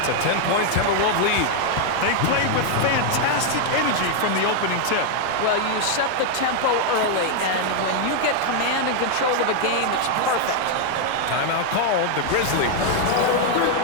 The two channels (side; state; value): both; different; correlation 0.00